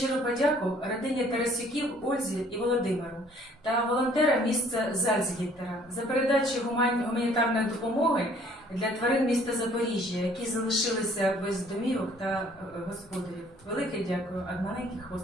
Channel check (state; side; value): normal; both; correlation 0.58